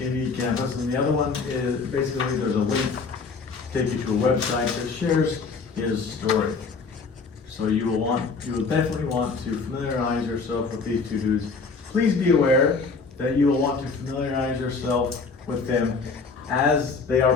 Campus, and the other one is basically there's a link to take you to a website that shares his story. So you will definitely want to familiarize yourself with these two dudes. Please be aware that you will want to familiarize yourself with them as they are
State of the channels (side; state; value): right; quieter; 4.6 dB